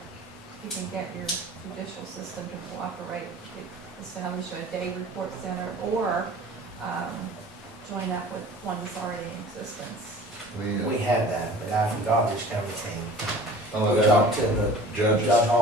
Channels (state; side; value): normal; both; correlation 0.44